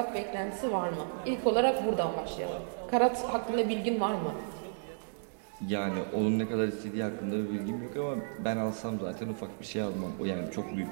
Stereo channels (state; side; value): silent; left; digital silence